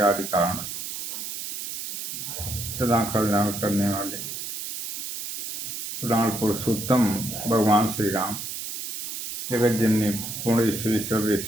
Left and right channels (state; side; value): noise; right; hiss, 6 dB below the sound